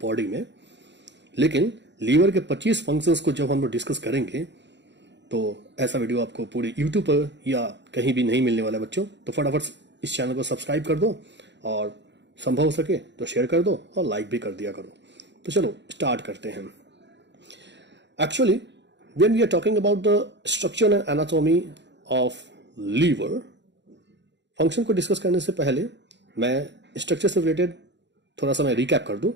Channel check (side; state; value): left; late; 0.52 ms